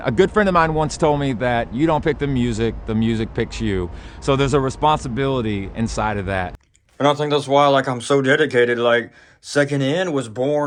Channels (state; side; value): identical; both; correlation 1.00